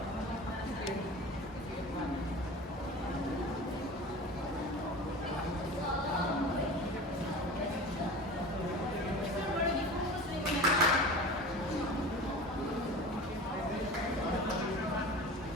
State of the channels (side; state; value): both; normal; correlation 0.35